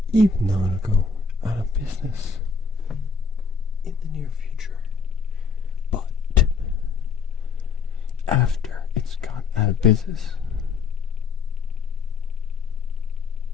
Even though it'll go out of business in the near future. But after it's gone out of business,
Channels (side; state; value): right; quieter; 5.3 dB